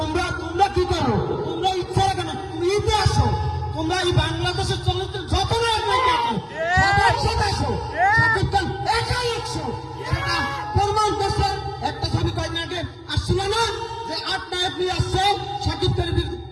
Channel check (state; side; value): identical; both; correlation 1.00